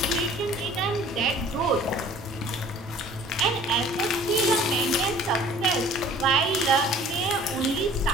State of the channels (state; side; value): normal; both; correlation 0.50